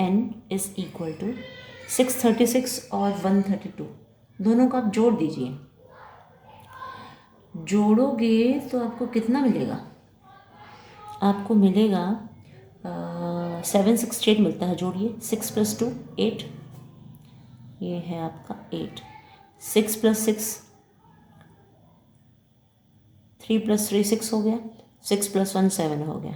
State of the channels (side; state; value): both; identical; correlation 1.00